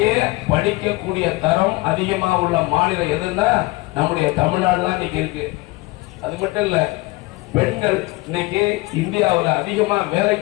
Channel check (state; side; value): quieter; right; 22.2 dB